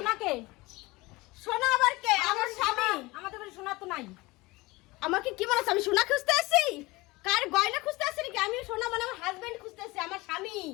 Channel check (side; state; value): right; quieter; 22.1 dB